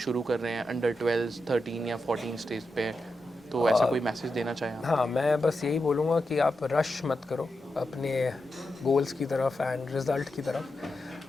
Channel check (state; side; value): normal; both; correlation 0.88